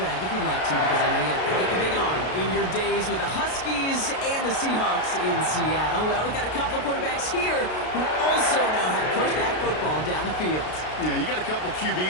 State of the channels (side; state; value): right; late; 33 ms